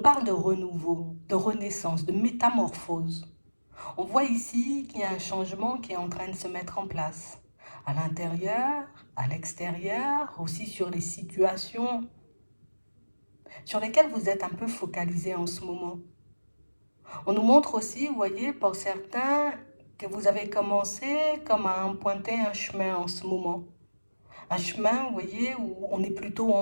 de renouveau, de renaissance, de métamorphose. On voit ici qu'il y a un changement qui est en train de se mettre en place. À l'intérieur, à l'extérieur, aussi sur les situations sur lesquelles vous êtes un peu focalisé en ce moment. On nous montre aussi, vous voyez, pour certains, que vous avez commencé comme à emprunter un chemin en ce moment. Un chemin, vous voyez, où on est plutôt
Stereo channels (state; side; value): inverted; both; correlation -1.00